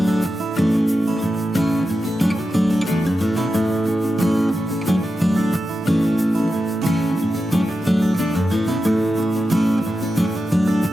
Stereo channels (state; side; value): normal; both; correlation 0.90